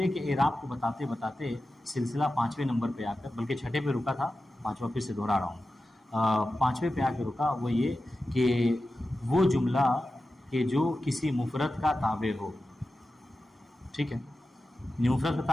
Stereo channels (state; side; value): normal; both; correlation 0.93